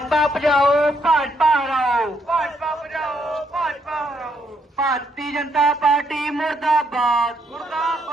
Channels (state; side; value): normal; both; correlation 0.74